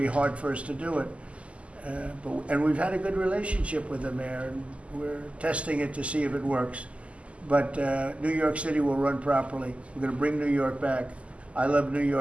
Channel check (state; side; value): late; left; 0.060 ms